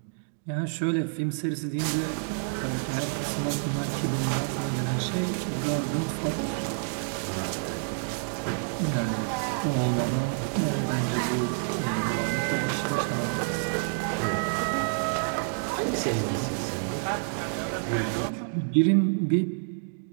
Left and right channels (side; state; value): left; silent; digital silence